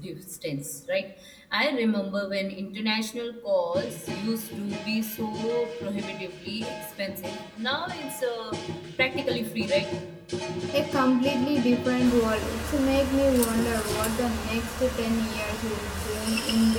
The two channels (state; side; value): identical; both; correlation 1.00